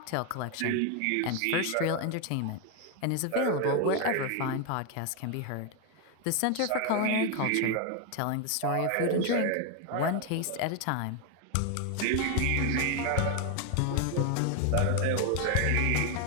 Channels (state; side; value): different; both; correlation 0.01